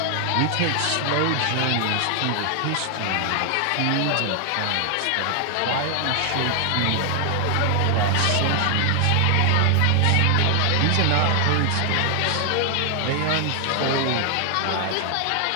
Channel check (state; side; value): different; both; correlation 0.00